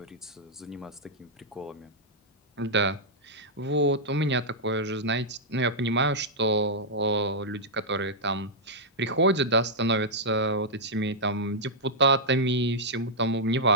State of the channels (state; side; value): normal; both; correlation -0.07